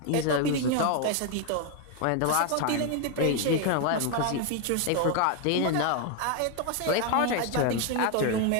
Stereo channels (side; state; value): both; different; correlation 0.01